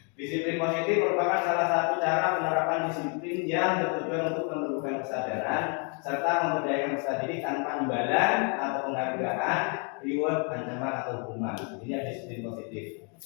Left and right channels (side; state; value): right; quieter; 37.3 dB